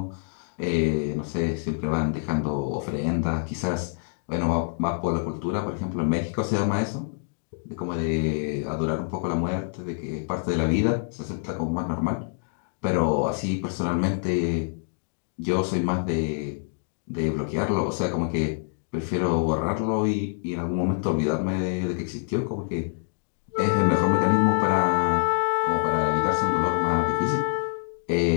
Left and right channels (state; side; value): silent; right; digital silence